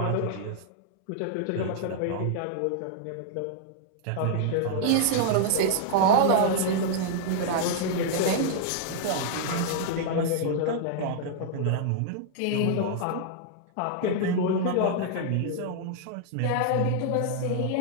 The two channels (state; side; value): different; both; correlation -0.01